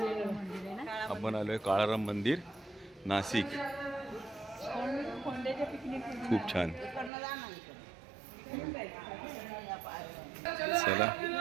आपण आलोय काळाराम मंदिर नाशिक. खूप छान. चला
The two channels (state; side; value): drops out; left; at 7.1 s